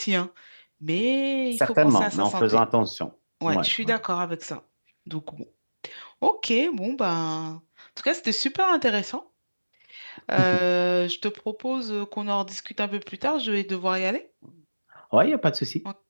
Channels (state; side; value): inverted; both; correlation -1.00